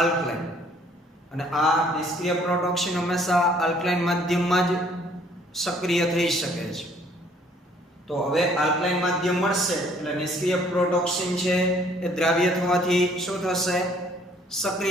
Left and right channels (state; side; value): normal; both; correlation 0.61